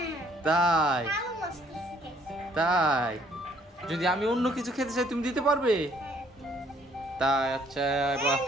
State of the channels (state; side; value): normal; both; correlation 0.63